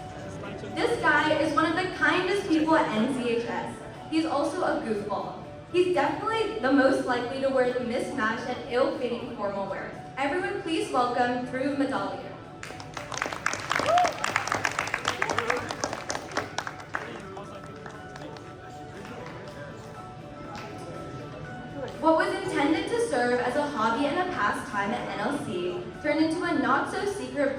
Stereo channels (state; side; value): identical; both; correlation 1.00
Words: This guy is one of the kindest people at NCHS. He's also a goofball. He's definitely the most likely to wear the mismatched and ill-fitting formal wear. Everyone please welcome Dhruv Madhalia. What was intended to serve as a hobby and a pastime at NLC turned into a not-so-secret